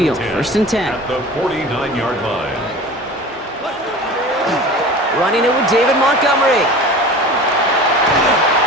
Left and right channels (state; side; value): normal; both; correlation 0.37